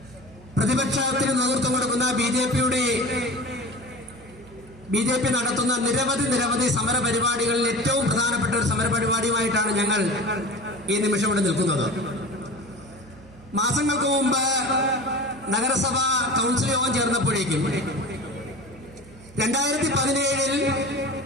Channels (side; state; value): right; noise; hum, 22 dB below the sound